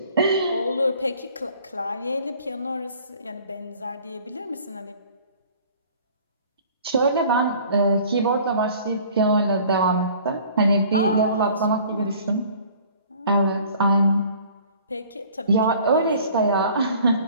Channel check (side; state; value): both; inverted; correlation -0.51